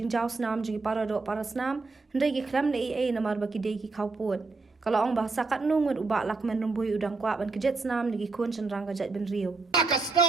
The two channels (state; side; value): quieter; left; 3.9 dB